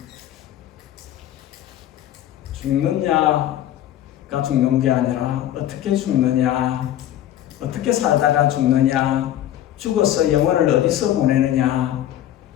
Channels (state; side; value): quieter; right; 12.2 dB